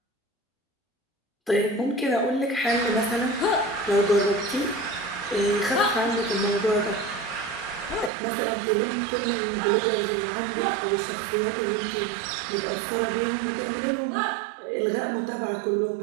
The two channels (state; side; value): drops out; left; at 8.1 s